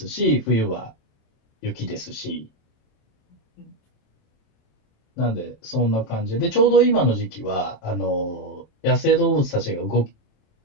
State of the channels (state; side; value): late; right; 27 ms